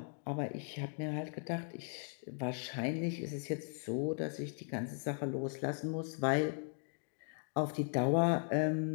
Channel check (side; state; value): right; silent; 52 dB below the other